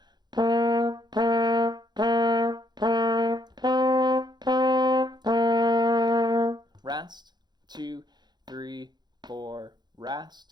Rest, 2, 3, 4,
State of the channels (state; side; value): late; left; 0.21 ms